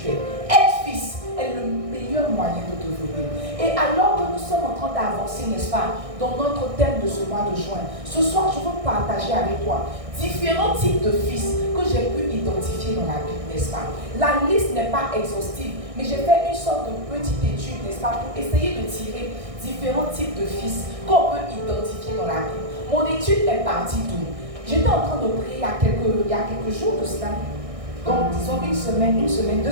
Être fils est le meilleur moyen de devenir. Et alors que nous sommes en train d'avancer, n'est-ce pas, dans notre thème de ce mois de juin, ce soir, je veux partager avec toi différents types de fils que j'ai pu identifier dans la Bible, n'est-ce pas? La liste n'est pas exhaustive, mais j'ai fait une sorte de petite étude, n'est-ce pas, pour essayer de tirer différents types de fils qu'on peut identifier dans la Bible. Mon étude est partie d'où? J'étais en train de prier il y a quelques jours de cela, donc disons une semaine, 2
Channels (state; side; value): late; left; 1.6 ms